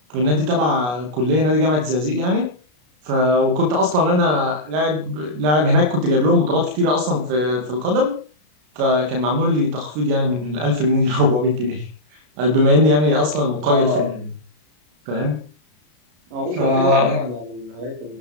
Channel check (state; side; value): late; left; 33 ms